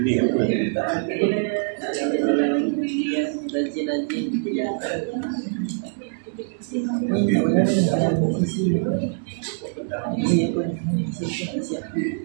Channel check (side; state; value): left; silent; digital silence